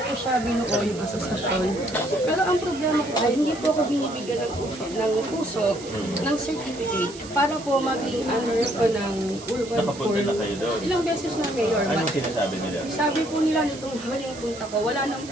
siya binuo yung asosasyon. Pero ang problema po ay hindi po ako binibigyan ng puso ng certificate para po maging under ko ng urban Nakapunta core. na kayo doon. Ilang beses na, Mayor. Anong sinasabi nila? Sabi po nila nitong huling punta ko, wala nang,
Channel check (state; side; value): noise; right; hiss, 16 dB below the sound